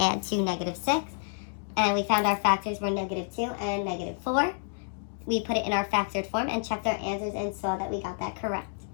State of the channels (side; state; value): right; silent; digital silence